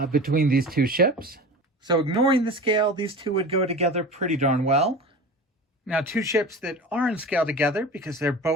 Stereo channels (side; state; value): both; normal; correlation 0.34